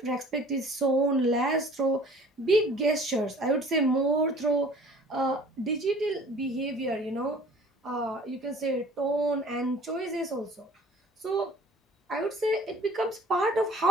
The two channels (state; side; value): normal; both; correlation 0.49